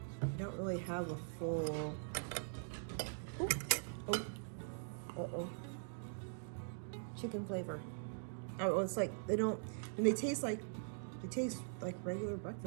don't really have a full, chicken flavor. Oh, it's like, and they taste like regular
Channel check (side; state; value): left; silent; digital silence